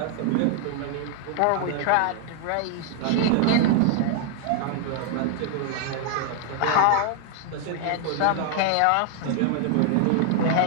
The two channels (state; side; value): different; both; correlation 0.00